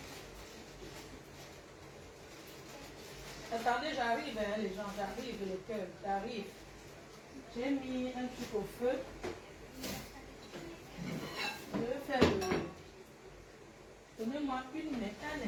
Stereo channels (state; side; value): identical; both; correlation 1.00